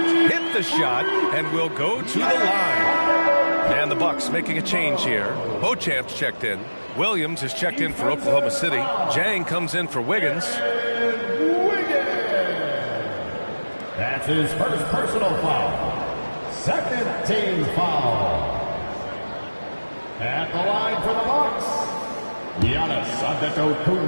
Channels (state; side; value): inverted; both; correlation -1.00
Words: Hit the shot and will go to the line. And the Bucks making a change here. Beauchamp's checked in. Williams is checked in for Oklahoma City. Jang comes in for Wiggins. That's his first personal foul. Second team foul. At the line for the Bucks, Giannis